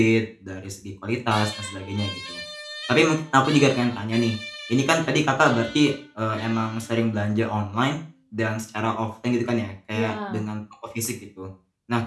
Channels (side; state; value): both; identical; correlation 1.00